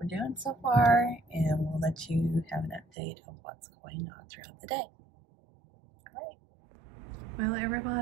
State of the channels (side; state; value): left; drops out; at 2.9 s